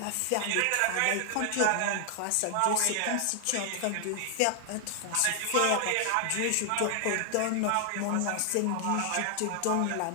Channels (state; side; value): different; both; correlation 0.00